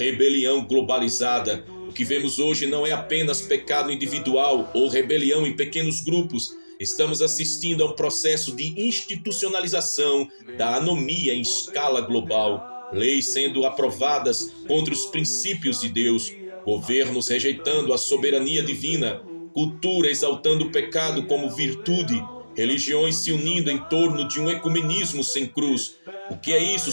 globalizada. O que vemos hoje não é apenas pecado individual ou rebelião em pequenos grupos. Estamos assistindo a um processo de institucionalização da anomia em escala global. Leis sendo aprovadas contra os princípios de Deus. Governos rejeitando a soberania divina. Cultura exaltando o pecado como virtude. Religiões se unindo em torno de um ecumenismo sem cruz. O que é isso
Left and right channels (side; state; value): both; inverted; correlation -1.00